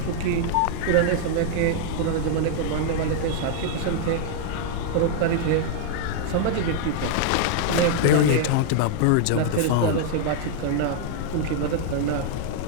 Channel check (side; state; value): both; different; correlation -0.01